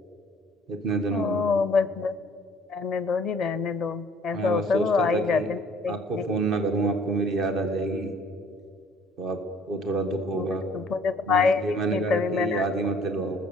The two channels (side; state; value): both; normal; correlation 0.57